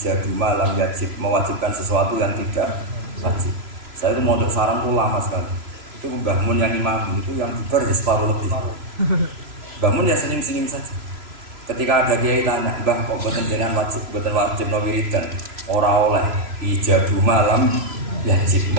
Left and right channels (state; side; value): late; left; 3.0 ms